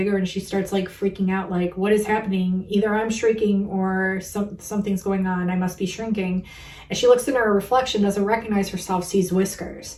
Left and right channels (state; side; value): identical; both; correlation 1.00